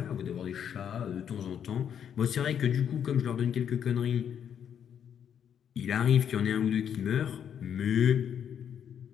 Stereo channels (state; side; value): quieter; right; 8.6 dB